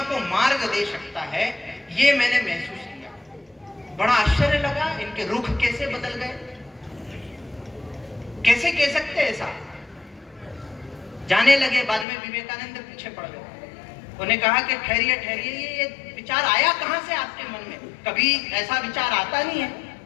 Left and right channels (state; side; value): drops out; right; at 12.1 s